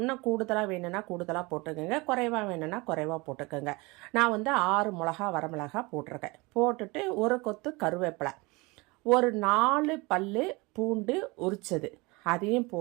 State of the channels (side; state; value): left; quieter; 25.1 dB